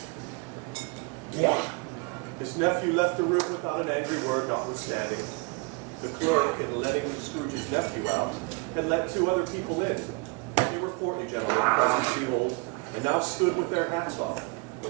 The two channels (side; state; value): left; quieter; 28.3 dB